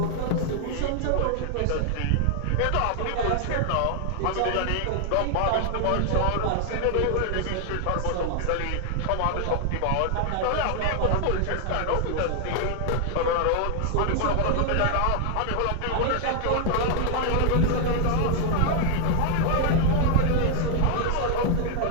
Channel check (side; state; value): both; different; correlation 0.00